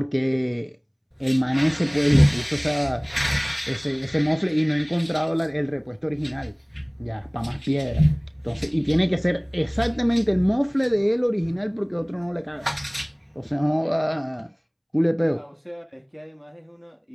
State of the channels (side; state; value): both; identical; correlation 1.00